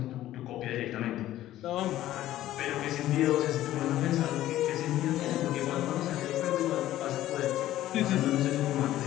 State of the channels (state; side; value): quieter; right; 14.0 dB